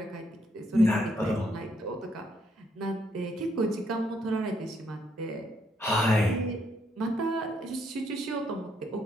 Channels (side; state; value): both; normal; correlation 0.73